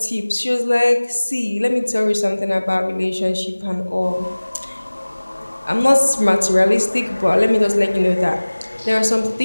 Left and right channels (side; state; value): both; inverted; correlation -1.00